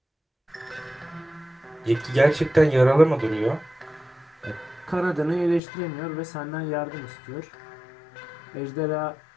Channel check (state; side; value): drops out; right; at 5.6 s